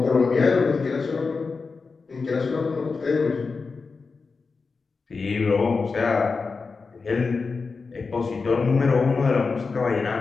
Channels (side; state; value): right; quieter; 4.5 dB